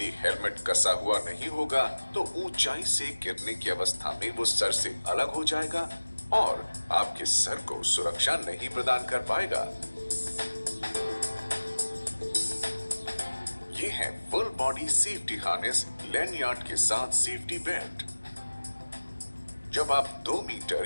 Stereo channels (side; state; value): both; inverted; correlation -1.00